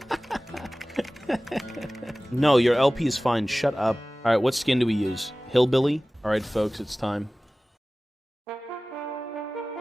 No, your LP is fine. Shut up. All right, what skin do we use? Hillbilly? All right, folks, it's time.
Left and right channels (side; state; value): both; normal; correlation 0.98